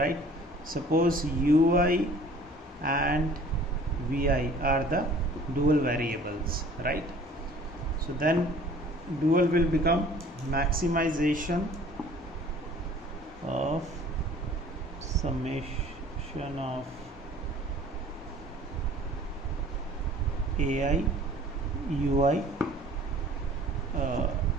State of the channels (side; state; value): both; normal; correlation 0.50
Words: Suppose ui and vi are the dual variables, right? So then dual will become maximization of summation of AI UI